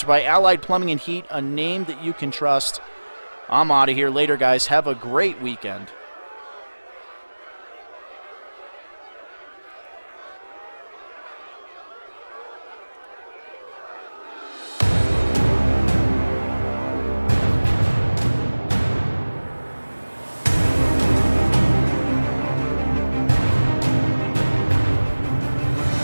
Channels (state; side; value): inverted; both; correlation -1.00